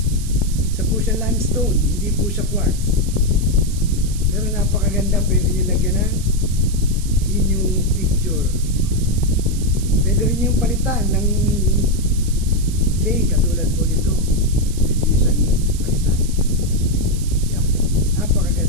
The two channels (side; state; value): right; noise; hiss, 14 dB below the sound